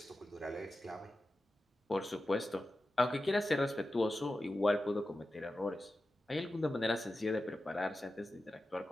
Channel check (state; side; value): normal; both; correlation 0.93